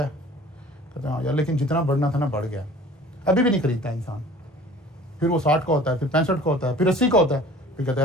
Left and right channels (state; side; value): normal; both; correlation 0.47